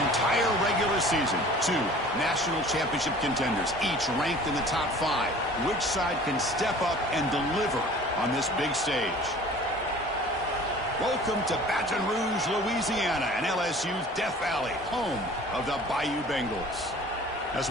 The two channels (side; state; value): both; normal; correlation 0.46